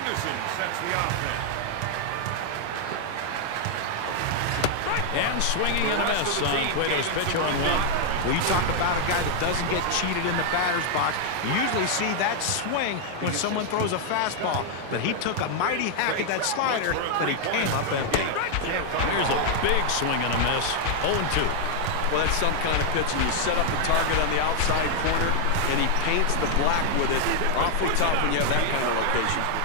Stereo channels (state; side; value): different; both; correlation 0.00